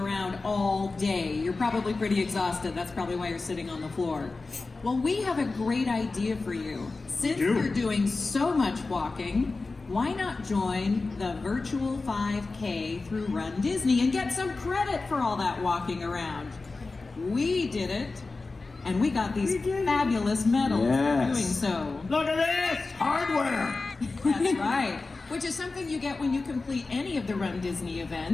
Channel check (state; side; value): quieter; right; 3.7 dB